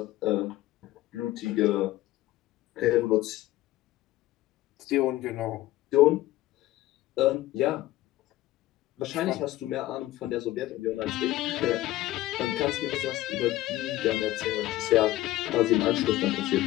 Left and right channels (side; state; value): right; quieter; 16.1 dB